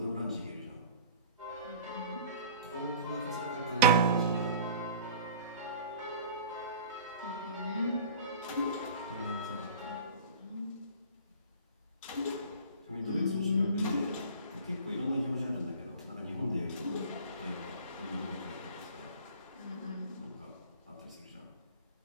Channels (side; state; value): both; inverted; correlation -0.42